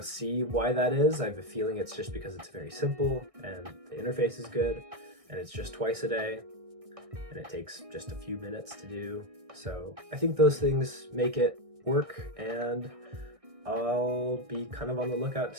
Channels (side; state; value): left; late; 1.6 ms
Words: see why that is. I have a feeling it's just because it's very simple and the interface is good, and it's just twice a day, and it takes just a few minutes to do. So I think those things make it work, and I'll be kind of on the lookout to